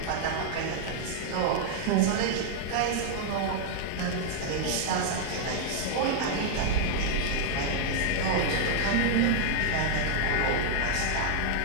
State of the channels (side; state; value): both; different; correlation 0.00